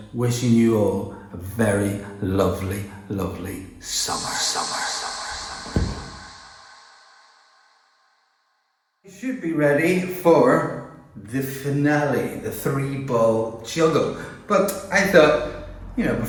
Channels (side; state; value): both; identical; correlation 1.00